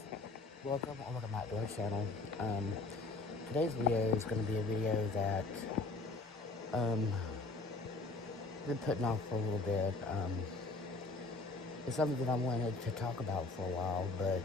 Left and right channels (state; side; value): quieter; right; 3.4 dB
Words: welcome back to our channel. Um, Today's video is going to be a video that um, I've been putting off for a little bit. It's something that I wanted to talk about for a while, but